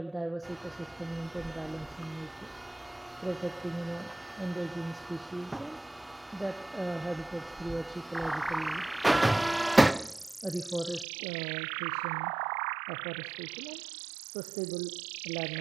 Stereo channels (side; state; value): left; drops out; at 11.1 s